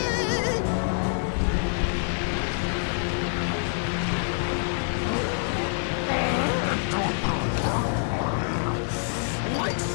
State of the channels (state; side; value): silent; right; digital silence